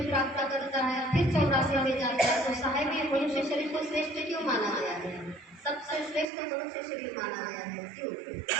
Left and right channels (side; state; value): left; drops out; at 6.3 s